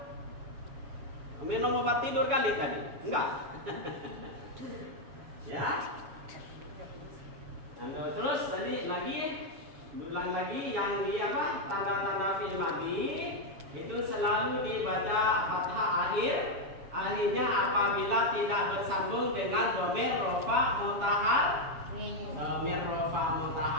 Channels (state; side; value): late; left; 7.1 ms